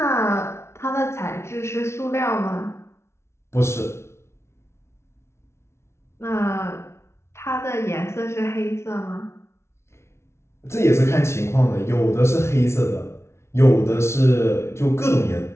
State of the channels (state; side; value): late; right; 0.13 ms